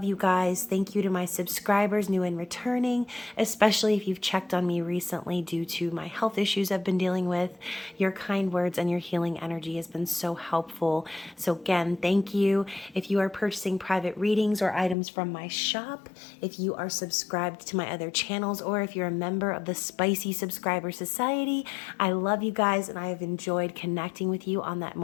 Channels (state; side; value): drops out; right; at 15.0 s